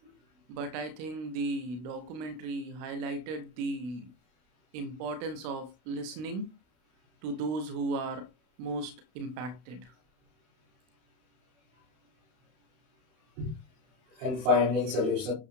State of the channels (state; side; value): late; left; 32 ms